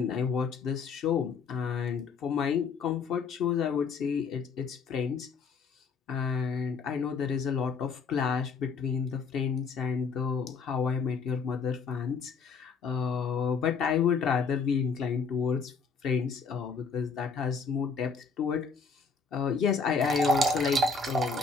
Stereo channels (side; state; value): right; quieter; 5.0 dB